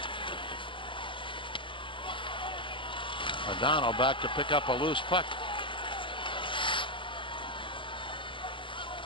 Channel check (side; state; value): right; late; 0.25 ms